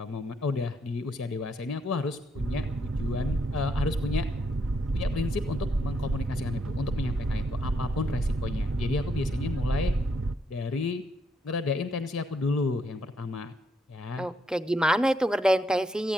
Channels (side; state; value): both; normal; correlation 0.75